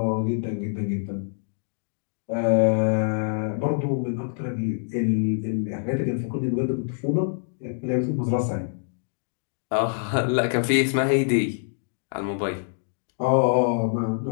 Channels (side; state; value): right; silent; digital silence